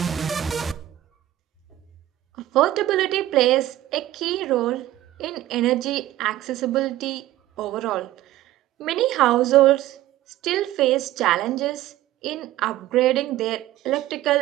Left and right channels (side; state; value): left; quieter; 14.5 dB